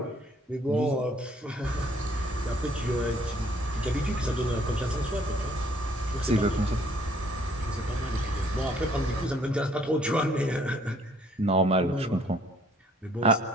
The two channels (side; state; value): both; normal; correlation 0.62